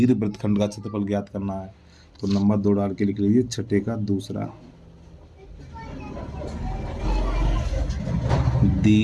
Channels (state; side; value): identical; both; correlation 1.00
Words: वृत्तखंड का क्षेत्रफल ज्ञात करना है, तो नंबर 2 डाल के लिख लीजिए 6 का दूसरा।